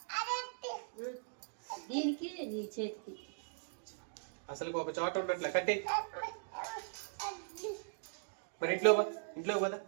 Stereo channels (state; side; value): silent; left; digital silence